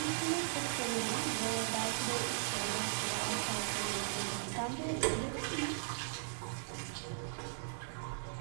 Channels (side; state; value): left; silent; 52 dB below the other